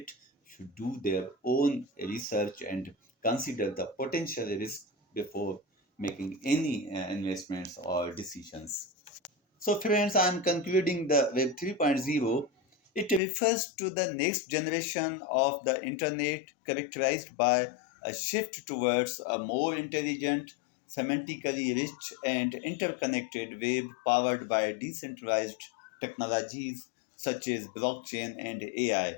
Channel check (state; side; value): drops out; right; at 13.2 s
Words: should do their own research and consider the potential risk before making any investments or decisions. So, friends, I'm concluding the Web 3.0. It refers to the next generation of the internet characterized by a shift towards a more intelligent, semantically rich, and interconnected web powered by decentralized technologies such as blockchain and AI.